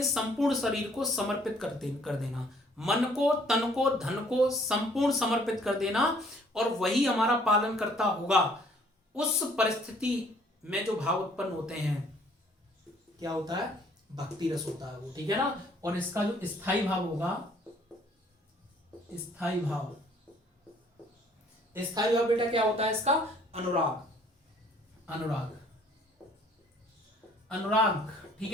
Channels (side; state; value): both; normal; correlation 0.60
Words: संपूर्ण शरीर को समर्पित कर देना, मन को, तन को, धन को संपूर्ण समर्पित कर देना, और वही हमारा पालन करता होगा। उस परिस्थिति में जो भाव उत्पन्न होते हैं क्या होता है, भक्ति रस होता है वो। ठीक है ना, और इसका जो स्थायी भाव होगा, स्थायी भाव, स्थायी भाव बेटा क्या होता है इसका, अनुराग, अनुराग, अनुराग।